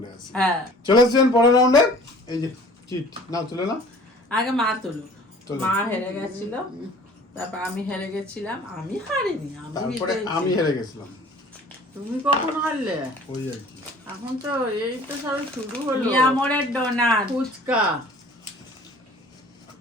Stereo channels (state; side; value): normal; both; correlation 0.48